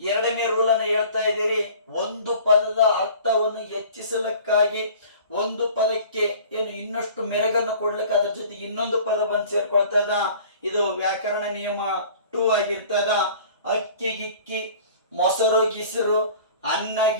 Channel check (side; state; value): both; inverted; correlation -0.46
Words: ರೂಲ್ ಅನ್ನು ಹೇಳ್ತಾ ಇದ್ದೀರಿ. ಒಂದು ಪದದ ಅರ್ಥವನ್ನು ಹೆಚ್ಚಿಸಲಿಕ್ಕಾಗಿ ಒಂದು ಪದಕ್ಕೆ ಏನು ಇನ್ನಷ್ಟು ಮೆರಗನ್ನು ಕೊಡ್ಲಿಕ್ಕೆ ಅದ್ರ ಜೊತೆಗೆ ಇನ್ನೊಂದು ಪದ ಬಂದು ಸೇರ್ಕೊಳ್ತದ. ಇದು ವ್ಯಾಕರಣ ನಿಯಮ 2 ಆಗಿರ್ತದ. ಅಕ್ಕಿ ಗಿಕ್ಕಿ, ಮೊಸರು ಗಿಸರು, ಅನ್ನ